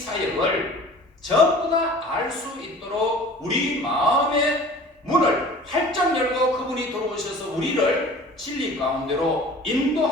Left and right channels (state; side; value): normal; both; correlation 0.44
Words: 전부 다 알 수 있도록 우리 마음의 문을 활짝 열고 그분이 들어오셔서 우리를 진리 가운데로